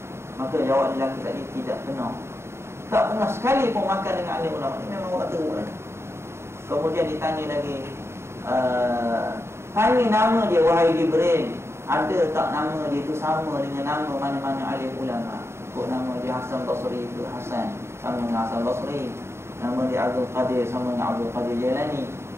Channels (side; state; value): left; late; 0.13 ms